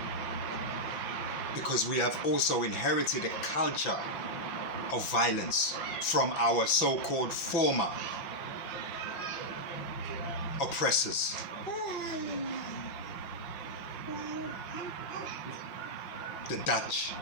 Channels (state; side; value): late; right; 5.9 ms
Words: Because we have also inherited a culture of violence from our so-called former oppressors. The Dutch,